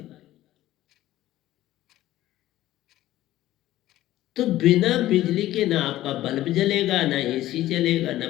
तो बिना बिजली के ना आपका बल्ब जलेगा, ना एसी चलेगा, ना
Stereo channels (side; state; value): right; quieter; 14.8 dB